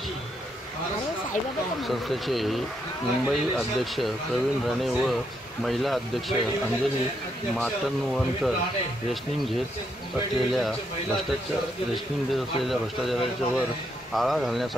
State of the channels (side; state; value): both; normal; correlation 0.77